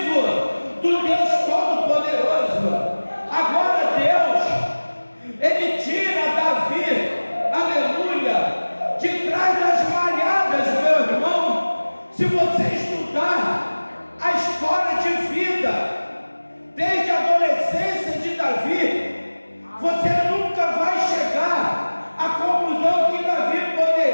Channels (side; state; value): both; inverted; correlation -1.00